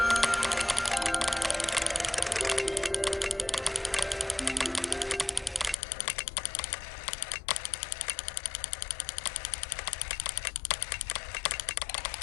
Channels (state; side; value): drops out; right; at 5.8 s